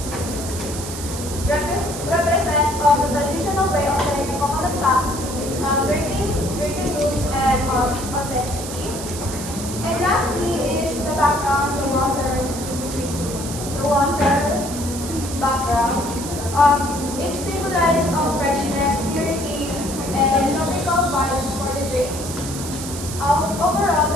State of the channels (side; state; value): right; noise; hiss, 9 dB below the sound